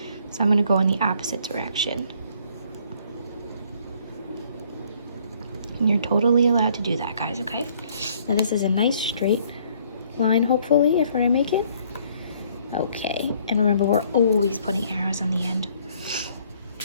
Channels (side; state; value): both; inverted; correlation -0.63